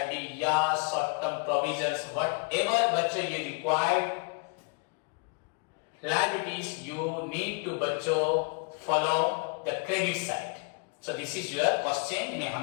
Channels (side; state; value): right; quieter; 32.5 dB